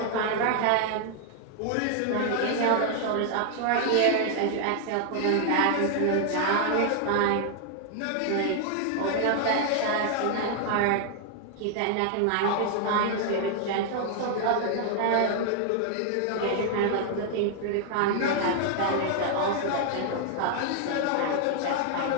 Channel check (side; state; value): both; different; correlation 0.00